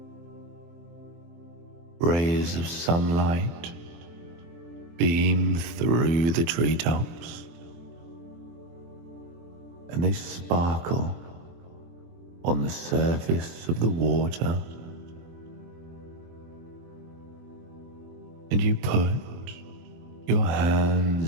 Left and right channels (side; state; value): left; late; 23 ms